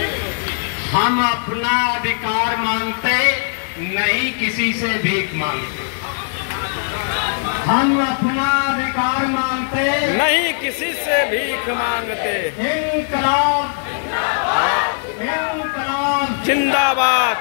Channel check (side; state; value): right; silent; digital silence